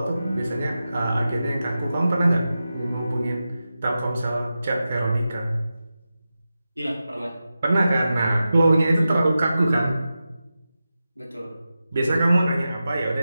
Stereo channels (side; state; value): both; inverted; correlation -0.92